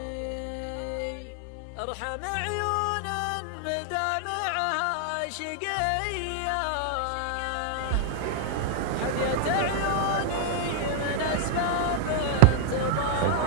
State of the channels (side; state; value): both; different; correlation 0.00